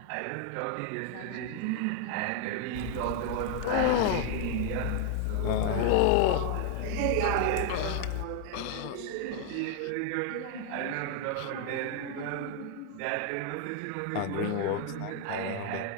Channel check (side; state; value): both; different; correlation 0.00